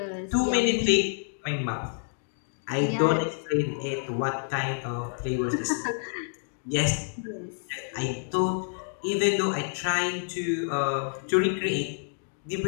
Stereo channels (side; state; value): right; silent; digital silence